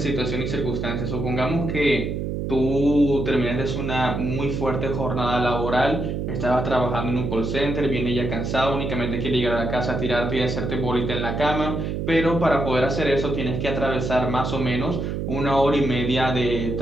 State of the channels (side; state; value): right; noise; hum, 2 dB below the sound